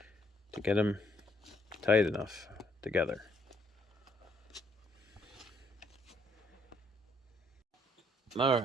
to get them tight enough together. All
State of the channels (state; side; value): normal; both; correlation 0.68